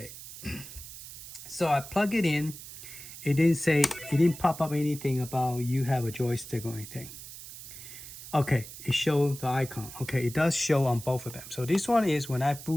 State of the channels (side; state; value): right; noise; hiss, 13 dB below the sound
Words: So I plug it in. It didn't say, it didn't pop up anything about you have a joystick or anything. Okay, it showed the icon. Okay, it does show on both of them. So this one is when I